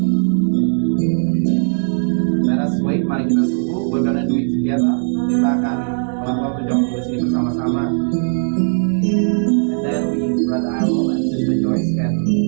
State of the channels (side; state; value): left; silent; 67 dB below the other